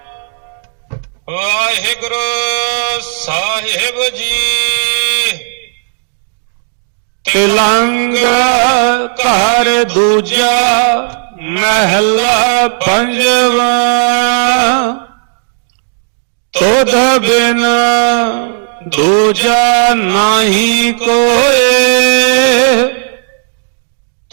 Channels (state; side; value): silent; left; digital silence